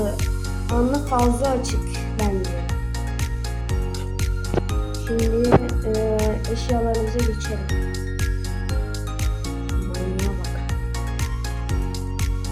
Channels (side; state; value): both; identical; correlation 1.00